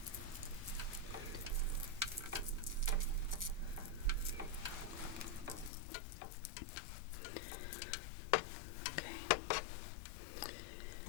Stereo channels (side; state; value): right; drops out; at 5.7 s